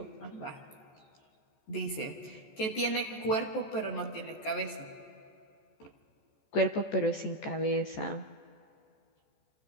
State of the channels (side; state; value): right; late; 14 ms